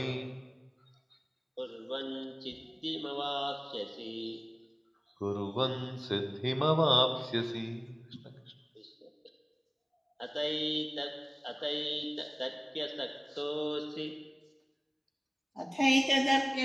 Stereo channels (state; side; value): identical; both; correlation 1.00